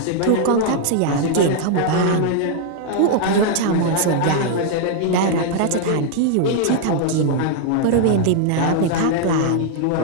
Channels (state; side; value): different; both; correlation 0.00